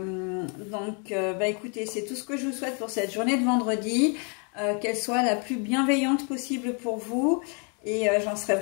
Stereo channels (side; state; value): right; quieter; 37.3 dB